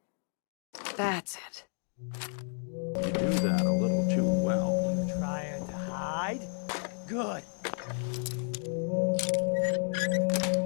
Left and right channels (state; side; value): silent; right; 57 dB below the other